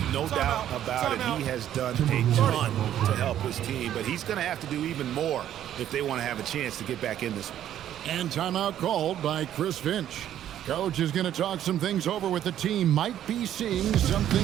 No doubt about it. He has done a ton to help his team. But he's going to have to do even more if they want to have a chance to get back in this one. And timeout called by Chris Finch. Coach is going to talk some things over with the team. Might be seeing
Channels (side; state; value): left; quieter; 11.2 dB